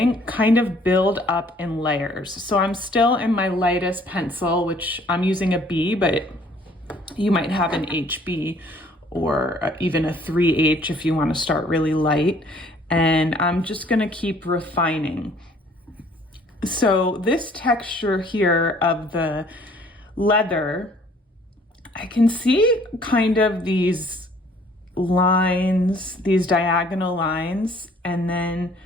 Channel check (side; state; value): both; normal; correlation 0.58